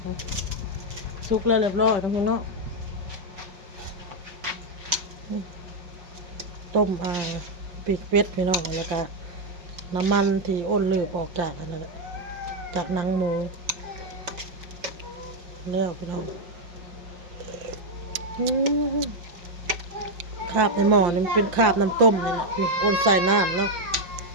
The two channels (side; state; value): left; late; 5.8 ms